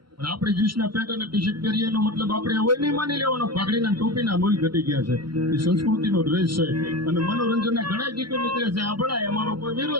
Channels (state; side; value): late; left; 0.73 ms